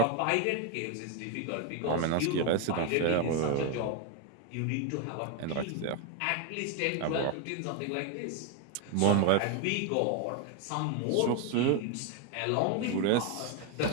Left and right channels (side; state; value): both; different; correlation 0.01